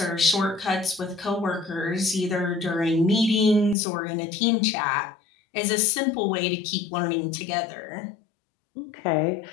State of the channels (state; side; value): drops out; right; at 3.8 s